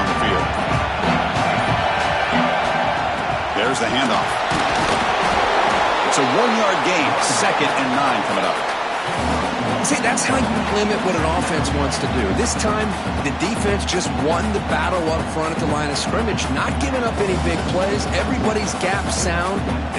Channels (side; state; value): both; identical; correlation 1.00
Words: the field. There's the handoff. It's a 1-yard gain. 2nd and 9 coming up. See, that's how you limit what an offense wants to do. This time, the defense just won the battle up front at the line of scrimmage, not giving up any big plays. Everybody's gap sound.